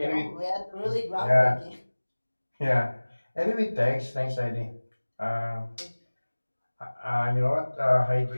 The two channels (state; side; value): inverted; both; correlation -1.00